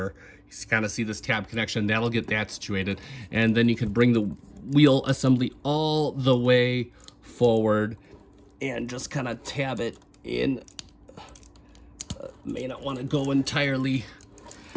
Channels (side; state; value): both; identical; correlation 1.00